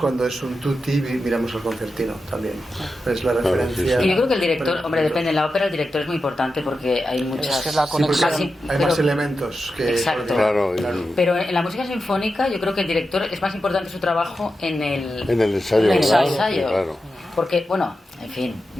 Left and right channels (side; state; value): both; normal; correlation 0.90